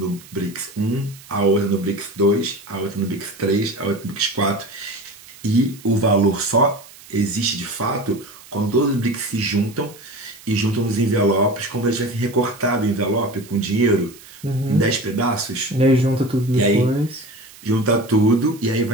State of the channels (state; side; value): noise; right; hiss, 21 dB below the sound